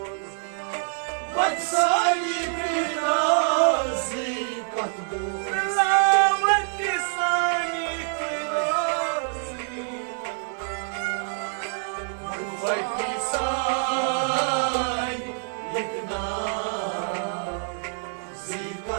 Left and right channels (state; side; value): silent; left; 61 dB below the other